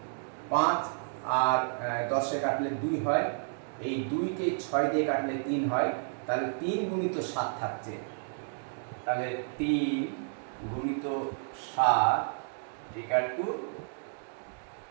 5 আর 10-এ কাটলে 2 হয়, এই 2কে 6 দিয়ে কাটলে 3 হয়, তাহলে 3 গুণিত 7 থাকছে, তাহলে 3 গুণিত 7 ইকুয়াল টু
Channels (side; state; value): left; silent; digital silence